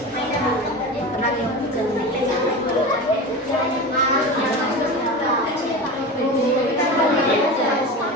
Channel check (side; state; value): both; normal; correlation 0.28